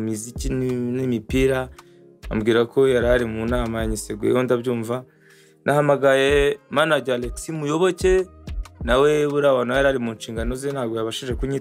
muziki n'imipira, ambwira ko yarari mu nama yanyiseguyeho ndabyumva. Nahamagaye manager Alex Muyoboke, nawe burabona yarari mu nshingano ze ntabwo yabashije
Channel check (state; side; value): identical; both; correlation 1.00